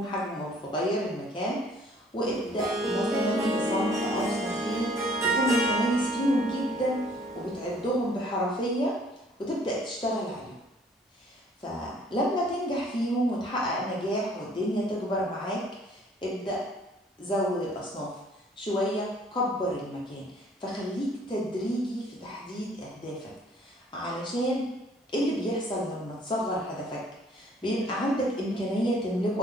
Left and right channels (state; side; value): normal; both; correlation 0.58